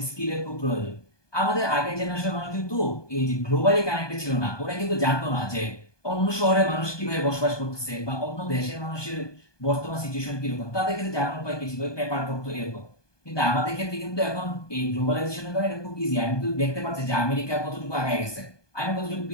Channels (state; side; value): late; right; 1.2 ms